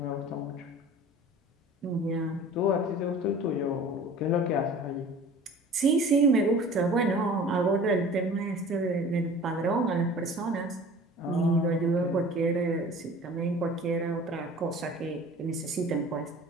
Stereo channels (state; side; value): normal; both; correlation 0.43